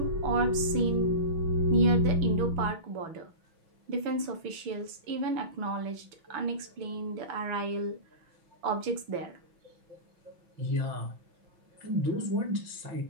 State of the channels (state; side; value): late; left; 6.2 ms